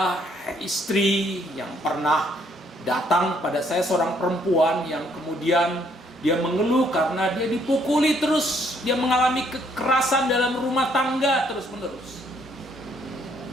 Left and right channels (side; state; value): both; normal; correlation 0.68